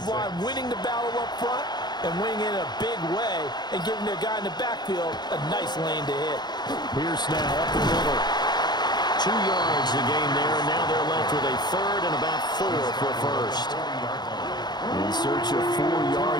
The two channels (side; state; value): right; late; 0.21 ms